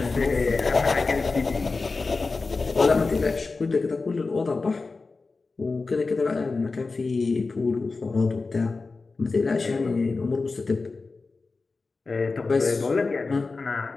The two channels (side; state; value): right; quieter; 4.0 dB